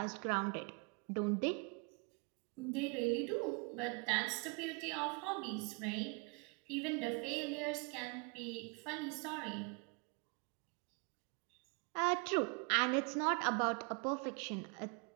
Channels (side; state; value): left; quieter; 33.4 dB